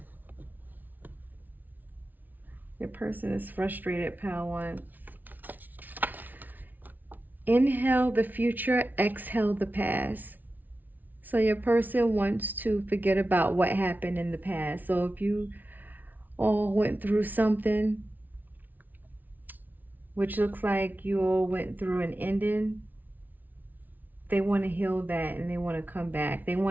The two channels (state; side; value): late; left; 0.083 ms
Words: Your person is frustrated, Power One. Inhale the future, exhale the past. So your person wants to forget about what happened in the past. So if you all went through something, which looks like you all went through an ending, they want to heal that and they want to come back. They